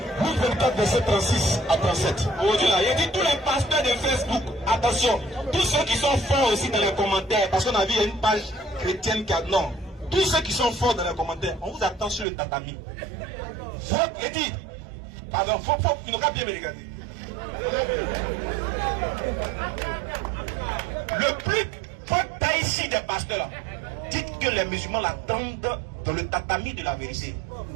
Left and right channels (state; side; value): drops out; left; at 12.2 s